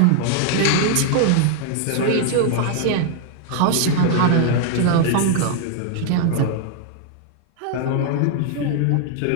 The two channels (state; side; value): different; both; correlation 0.00